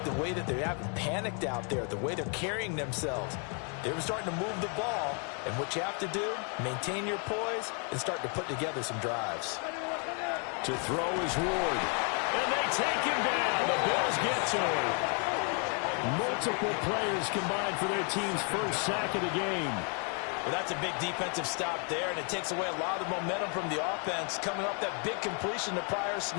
the way that they haven't panicked out there, the way they're carrying themselves. They were starting to move the ball, and what you have to do, maintain your poise and start to put together some drives. To throw is Ward. And they take him down. The Bills get to him. Multiple players combined for their team's first sack of the game. Well, that's a big defensive stop there, and it takes away a lot of the momentum from the offense coming off that big completion the prior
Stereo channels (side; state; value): right; quieter; 39.4 dB